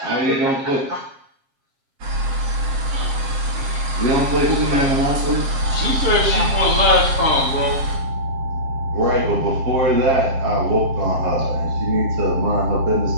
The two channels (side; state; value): left; late; 7.4 ms